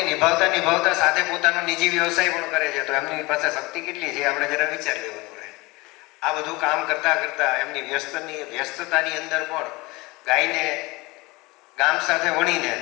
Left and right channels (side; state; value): right; quieter; 23.2 dB